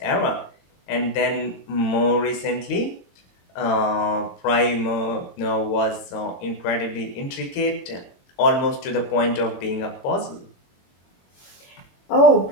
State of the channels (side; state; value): right; late; 22 ms